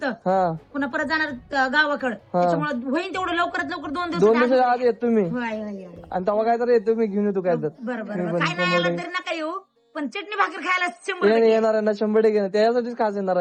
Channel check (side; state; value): both; identical; correlation 1.00